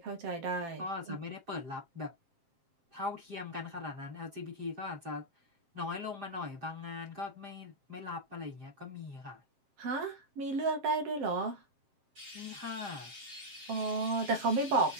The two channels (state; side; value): late; left; 7.6 ms